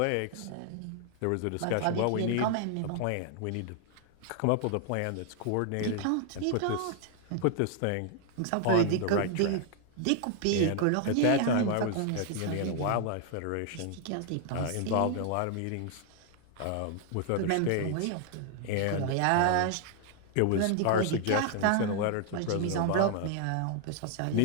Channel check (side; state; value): both; different; correlation 0.00